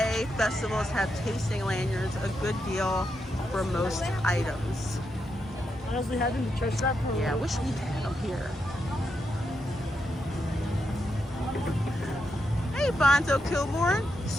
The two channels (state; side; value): normal; both; correlation 0.83